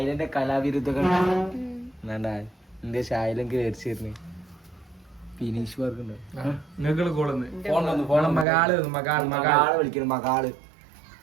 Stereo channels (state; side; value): drops out; left; at 8.5 s